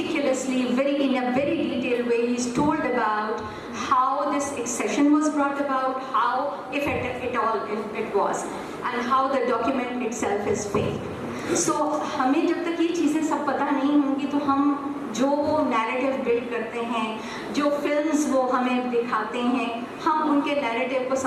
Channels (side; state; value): both; identical; correlation 1.00